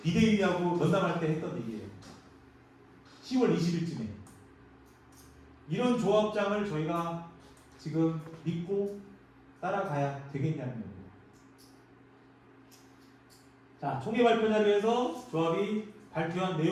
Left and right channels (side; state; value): both; identical; correlation 1.00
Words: 비대위하고 면담할 때 했던 얘기예요. 10월 20일쯤에 이런 조합장을 저희가 지금 믿고 따라가야 되겠냐는 겁니다. 자, 총회 발표 자료에서 조합이 발표한